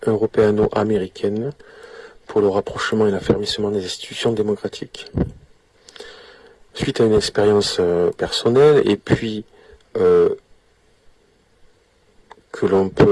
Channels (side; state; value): both; identical; correlation 1.00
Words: européano-américaine pour le rapprochement et l'affermissement des institutions démocratiques. Suite à une expérience personnelle et puis que l'on